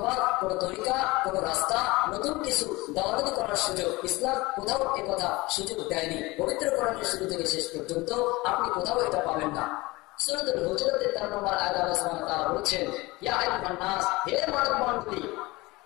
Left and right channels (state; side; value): quieter; right; 22.0 dB